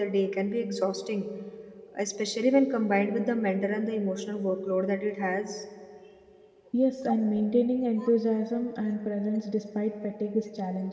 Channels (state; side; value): identical; both; correlation 1.00